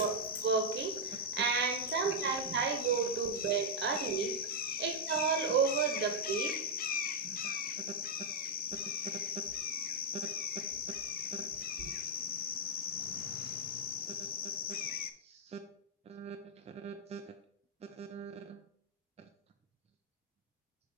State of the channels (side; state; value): both; normal; correlation -0.04